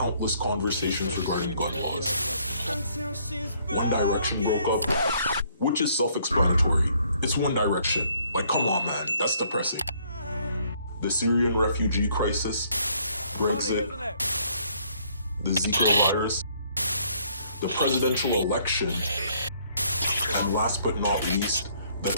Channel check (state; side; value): inverted; both; correlation -0.65